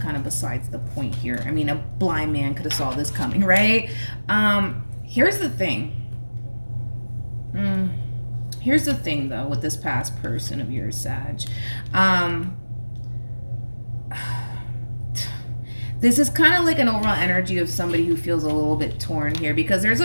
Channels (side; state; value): both; inverted; correlation -1.00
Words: of besides the point here. I mean, a blind man could have saw this coming, right? Here's the thing. Here's the thing, though, with this past person of yours, Sag. This is kind of like an overall energy of somebody who feels a little bit torn here, because there's